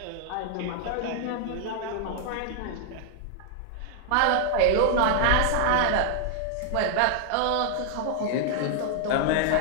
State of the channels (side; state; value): both; different; correlation 0.00